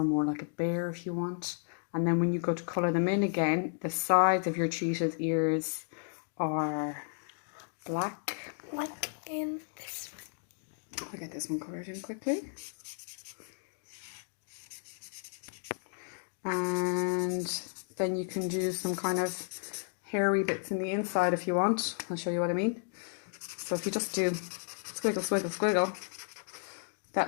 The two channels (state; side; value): silent; right; digital silence